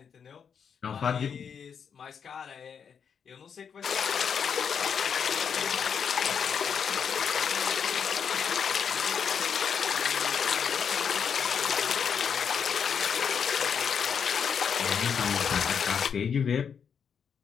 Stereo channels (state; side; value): quieter; right; 7.0 dB